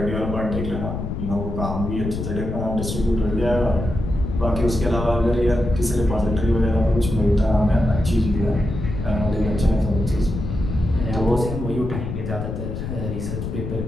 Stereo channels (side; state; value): left; noise; rumble, 5 dB below the sound